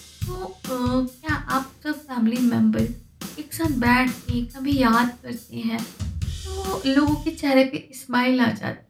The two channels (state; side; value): identical; both; correlation 1.00